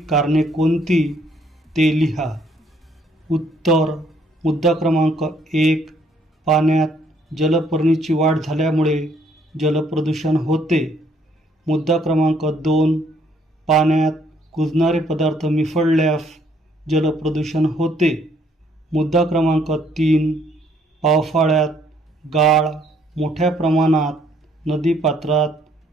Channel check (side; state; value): both; normal; correlation 0.66